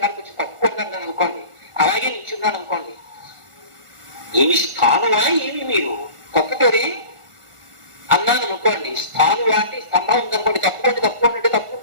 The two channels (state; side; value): late; left; 1.4 ms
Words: వచ్చి తప్పుకున్నాను అనుకోండి, అలాగే నిల్చున్నాను అనుకోండి, ఏమి స్థానువా ఏమి మీరు తప్పుకోరే అన్నాను అనుకోండి. స్థానువా అంటే స్తంభం ఉందనుకోండి, తప్పుకోండి అంటే